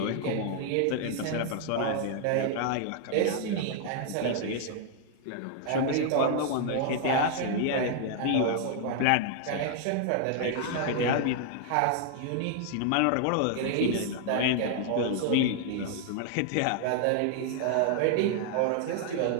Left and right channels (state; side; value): different; both; correlation 0.00